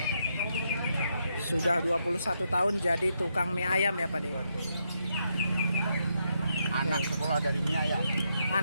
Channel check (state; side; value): inverted; both; correlation -0.79